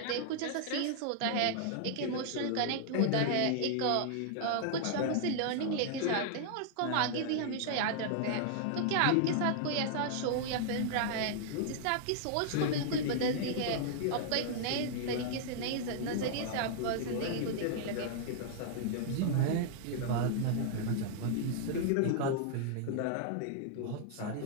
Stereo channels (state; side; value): different; both; correlation -0.01